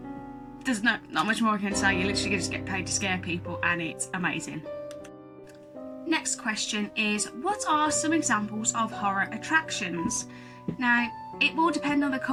There's not much more I can say. You literally just get paid to scare people, and it's amazing. Next question is, what are some examples of horror attractions? Now, it will depend on the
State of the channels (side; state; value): both; identical; correlation 1.00